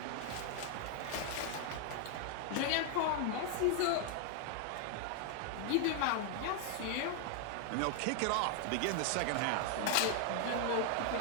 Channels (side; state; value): both; different; correlation 0.00